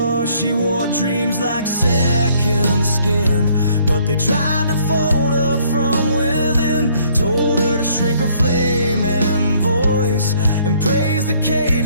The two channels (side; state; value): both; inverted; correlation -0.63